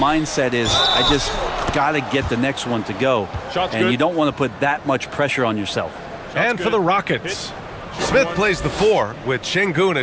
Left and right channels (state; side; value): identical; both; correlation 1.00